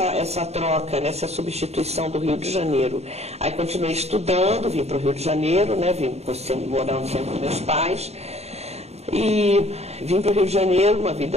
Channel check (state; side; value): late; left; 0.31 ms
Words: troca, né, essa substituição do Rio de Janeiro. Aí continuei estudando, vim para o Rio de Janeiro, né, morando sempre com meus pais, e vim para o Rio de Janeiro, uma